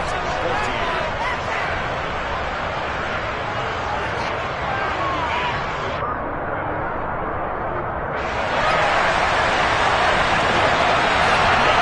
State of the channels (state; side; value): identical; both; correlation 1.00